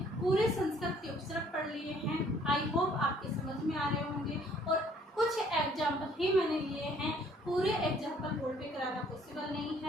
पूरे संस्कृत के उपसर्ग पढ़ लिए हैं। आई होप आपके समझ में आ रहे होंगे, और कुछ एग्जाम्पल ही मैंने लिए हैं, पूरे एग्जाम्पल बोर्ड पे कराना पॉसिबल नहीं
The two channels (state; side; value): normal; both; correlation 0.60